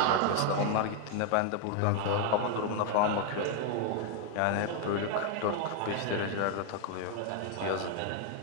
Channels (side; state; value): both; different; correlation 0.01